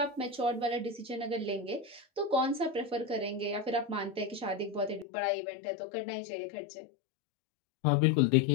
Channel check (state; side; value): drops out; right; at 5.1 s